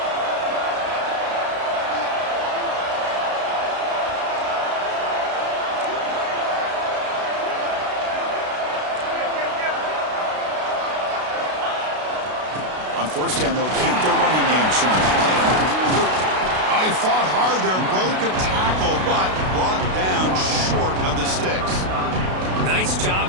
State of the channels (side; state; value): left; late; 32 ms